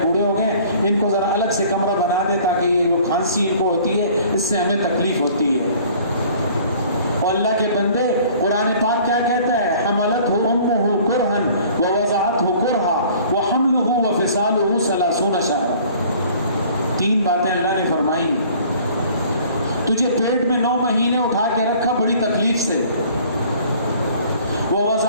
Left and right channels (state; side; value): inverted; both; correlation -0.52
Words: بوڑھے ہو گئے، ان کو ذرا الگ سے کمرہ بنا دے تاکہ یہ جو کھانسی ان کو ہوتی ہے اس سے ہمیں تکلیف ہوتی ہے. اور اللہ کے بندے قرآن پاک کیا کہتا ہے؟ حملتہ امہ کرہا ووضعتہ کرہا وحملہ وفصالہ 30 شہرا. 3 باتیں اللہ نے فرمائی. تجھے پیٹ میں 9 مہینے اٹھا کے رکھا بڑی تکلیف سے،